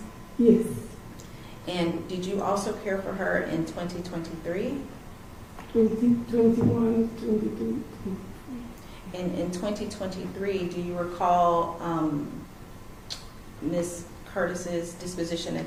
Yes, And did you also care for her in 2023? 2021, 22. And in 2023, do you recall Ms. Curtis's disposition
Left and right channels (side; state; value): both; identical; correlation 1.00